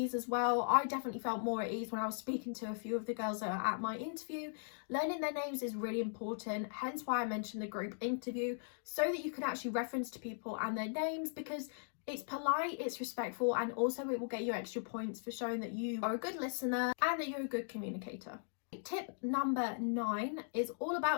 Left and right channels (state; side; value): silent; right; digital silence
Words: as well. I definitely felt more at ease when I was speaking to a few of the girls that are at my interview. Learning their names is really important. Hence why I mentioned the group interview, so that you can actually reference to people and their names, because it's polite, it's respectful, and also it will get you extra points for showing that you are a good listener and that you're a good communicator. Tip number 9 is all